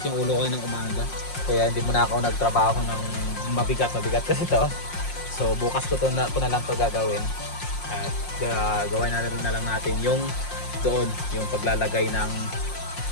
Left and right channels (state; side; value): late; right; 5.6 ms